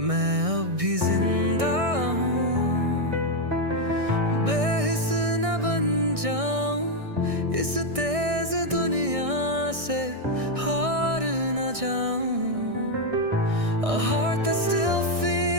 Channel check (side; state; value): left; late; 1.6 ms